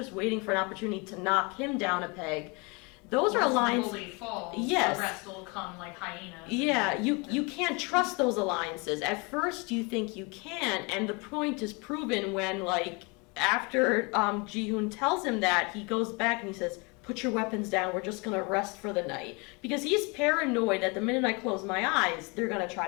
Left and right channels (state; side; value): quieter; right; 29.6 dB